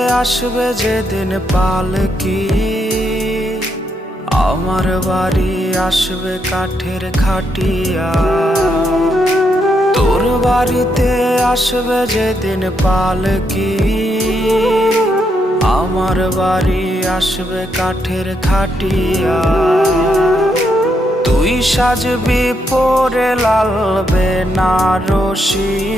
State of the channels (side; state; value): both; normal; correlation 0.79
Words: আসবে যেদিন পালকি, আমার বাড়ি আসবে কাঠের খাটিয়া। তোর বাড়িতে আসবে যেদিন পালকি, আমার বাড়ি আসবে কাঠের খাটিয়া। তুই সাজবি পরে লাল বেনারসি,